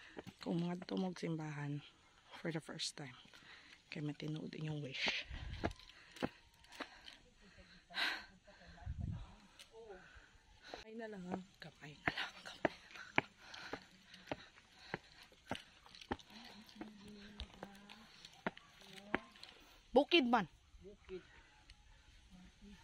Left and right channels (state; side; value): identical; both; correlation 1.00